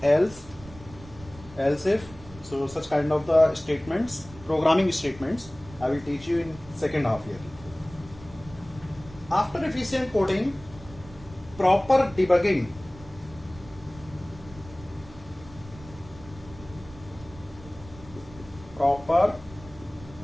else if. So such kind of the statements, programming statements, I will teach you in second half year. After efficient coding, proper debugging. Proper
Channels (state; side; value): noise; right; rumble, 19 dB below the sound